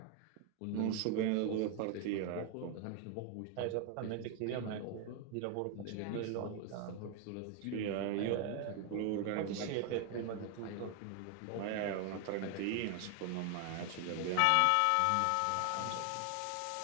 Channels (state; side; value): different; both; correlation 0.01